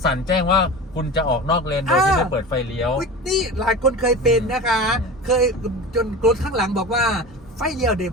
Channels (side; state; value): both; normal; correlation 0.31